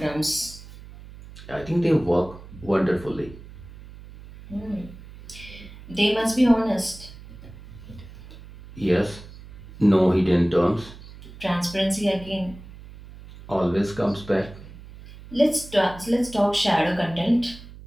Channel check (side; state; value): right; noise; hum, 17 dB below the sound